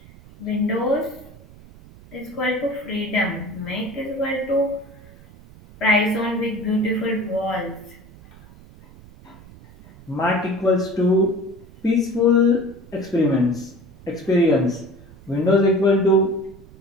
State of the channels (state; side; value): noise; right; rumble, 21 dB below the sound